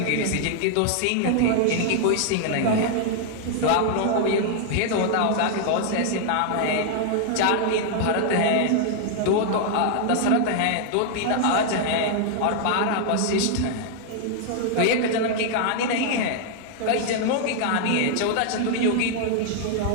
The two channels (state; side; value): different; both; correlation 0.00